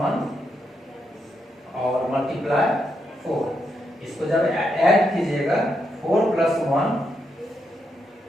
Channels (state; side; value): normal; both; correlation 0.81